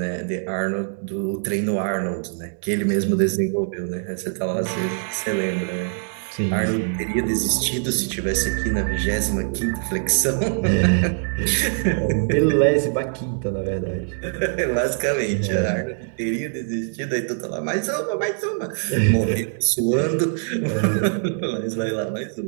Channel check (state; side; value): silent; left; digital silence